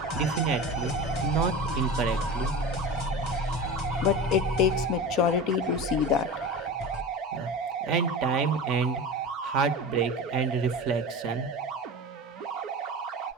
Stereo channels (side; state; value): both; normal; correlation 0.30